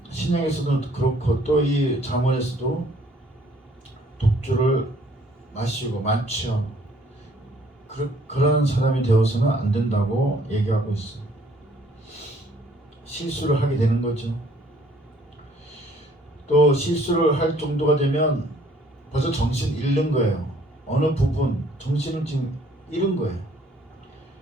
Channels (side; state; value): both; normal; correlation 0.60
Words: 신약에서도 그렇고 또 이 잠언에서도 독주를 마시고 만취하고 그런 사람이 되어서는 안 된다고 얘기하고 있어요. 실수를 하게 되는 거죠. 또 실수를 할 정도가 되면 벌써 정신 잃는 거예요. 어느 부분 정신을 지금 잃은 거예요.